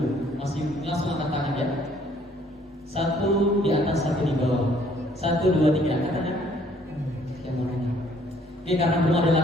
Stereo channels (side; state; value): both; normal; correlation 0.62